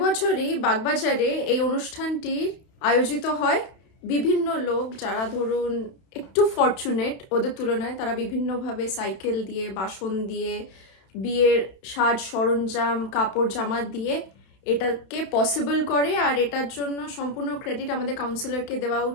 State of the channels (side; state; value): right; late; 31 ms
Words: বছরই বাগবাজারে এই অনুষ্ঠানটি আয়োজিত হয়। বিভিন্ন লোক যারা ধরুন একটু ফরচুনেট ওদের তুলনায় তারা বিভিন্নভাবে সাইকেল দিয়ে, বাসন দিয়ে, বিয়ের সাজ সরঞ্জাম, কাপড় জামা দিয়ে এটাকে পসিবল করে। আর এটার জন্য সম্পূর্ণ ক্রেডিট আমাদের কাউন্সিলরকে দেওয়া